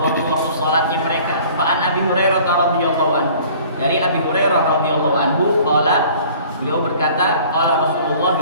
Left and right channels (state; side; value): inverted; both; correlation -0.50